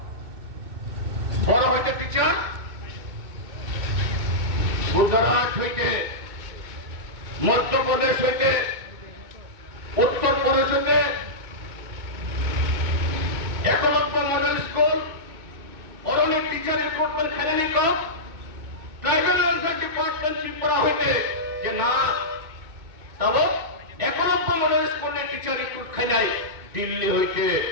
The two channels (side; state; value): left; late; 2.2 ms